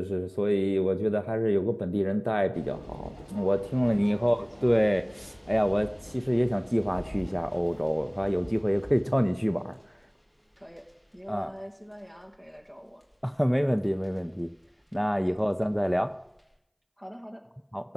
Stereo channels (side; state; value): both; identical; correlation 1.00